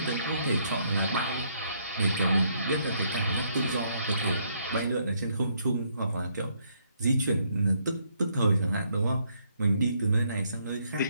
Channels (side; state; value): both; inverted; correlation -0.72